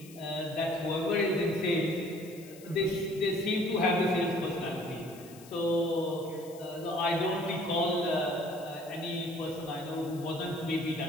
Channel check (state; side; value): noise; left; hiss, 21 dB below the sound